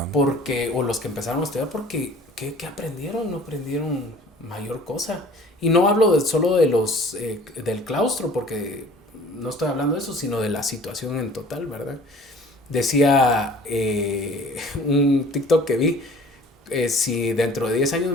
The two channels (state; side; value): normal; both; correlation 0.49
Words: porque, o los que empezaron a estudiar, porque, ¿qué aprendieron? No aprendieron mayor cosa. Y no hablo solo de del claustro, porque no estoy hablando de eso, sino de la situación en total, ¿verdad? decía un TikTok que vi, si dentro de 10 años